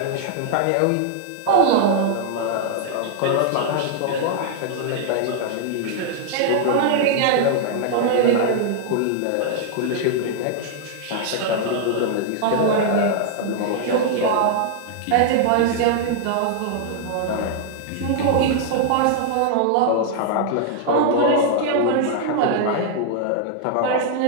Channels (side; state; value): both; different; correlation -0.01